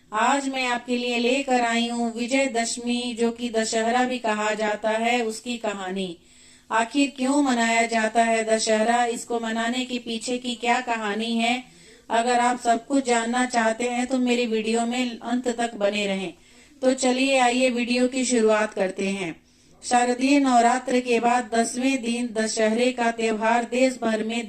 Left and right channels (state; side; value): identical; both; correlation 1.00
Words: आज मैं आपके लिए लेकर आई हूं विजयदशमी, जो कि दशहरा भी कहा जाता है, उसकी कहानी। आखिर क्यों मनाया जाता है दशहरा, इसको मनाने के पीछे की क्या कहानी है, अगर आप सब कुछ जानना चाहते हैं तो मेरी वीडियो में अंत तक बने रहें। तो चलिए आइए वीडियो की शुरुआत करते हैं। शारदीय नवरात्र के बाद 10वें दिन दशहरे का त्योहार देश भर में